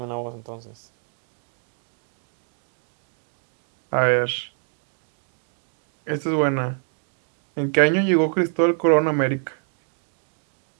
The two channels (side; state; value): left; silent; 59 dB below the other